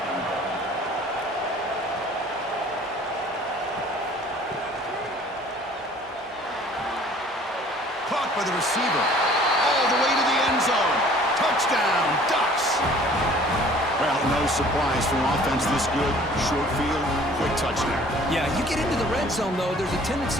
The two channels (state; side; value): normal; both; correlation 0.52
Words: Caught by the receiver. All the way to the end zone. Touchdown, Ducks. Well, no surprise from offense this good. Short field, quick touchdown. Yeah, you get into the red zone, though, there's a